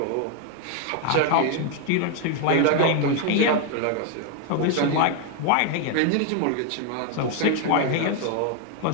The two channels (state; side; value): different; both; correlation 0.00